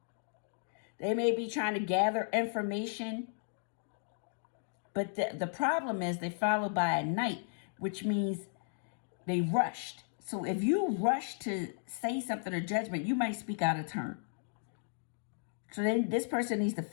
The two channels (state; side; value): silent; right; digital silence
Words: They may be trying to gather information, but the problem is they followed by a Knight, which means they rushed. So if you rush to say something or judgment, you might speak out of turn. So then this person needs to